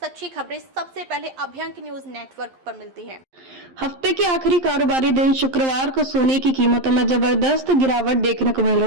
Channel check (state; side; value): late; left; 11 ms